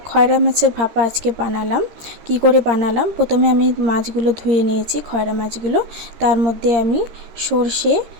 খয়রা মাছের ভাপা আজকে বানালাম। কি করে বানালাম, প্রথমে আমি মাছগুলো ধুয়ে নিয়েছি, খয়রা মাছগুলো। তার মধ্যে আমি সর্ষে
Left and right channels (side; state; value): left; late; 13 ms